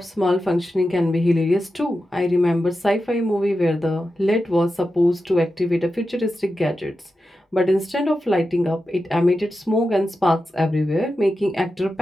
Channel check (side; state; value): both; normal; correlation 0.91